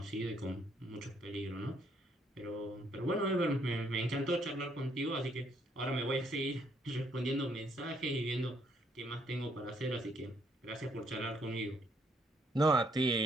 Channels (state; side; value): normal; both; correlation 0.69